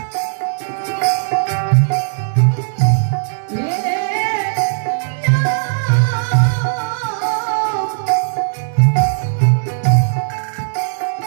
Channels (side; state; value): left; silent; digital silence